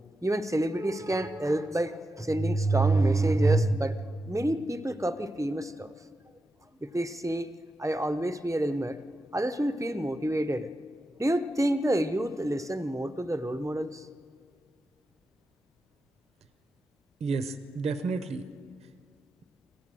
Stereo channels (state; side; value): normal; both; correlation 0.89